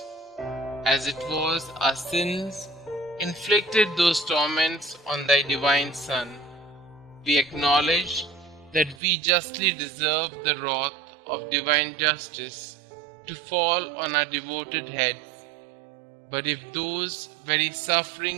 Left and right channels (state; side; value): drops out; left; at 9.0 s